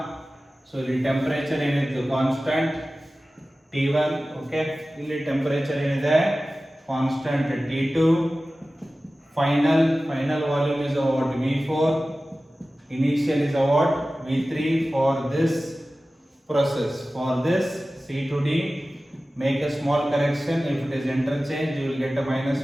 so ಇಲ್ಲಿ ಟೆಂಪರೇಚರ್ ಏನಿತ್ತು constant T1. Okay ಇಲ್ಲಿ ಟೆಂಪರೇಚರ್ ಏನಿದೆ constant T2. final volume is what V4, initial is what V3 for this process. for this C to D make a small correction. if it is interchange you will get a minus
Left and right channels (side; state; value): both; normal; correlation 0.96